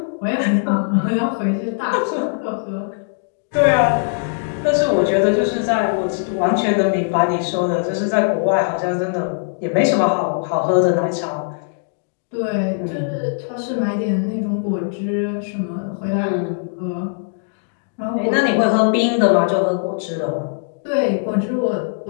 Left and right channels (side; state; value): right; silent; digital silence